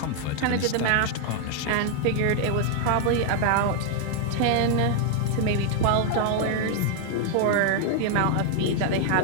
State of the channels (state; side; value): different; both; correlation 0.00